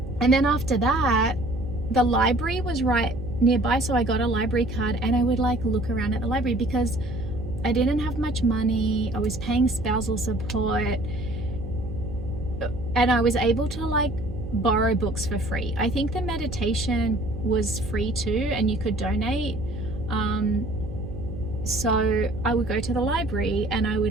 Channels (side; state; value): right; noise; hum, 11 dB below the sound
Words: And then after that, the library was right nearby, so I got a library card and I would like look around at the library because I didn't have much money. I was paying spousal support, and I was able to like borrow books for free. I think the meditation was free too, and you could donate. So I would go to the library and I would